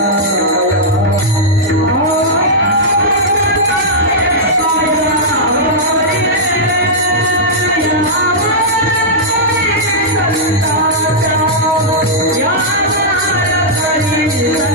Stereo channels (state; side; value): normal; both; correlation -0.09